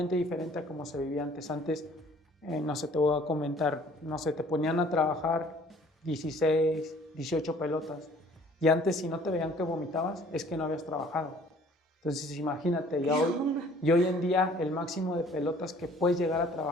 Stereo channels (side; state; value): both; normal; correlation 0.55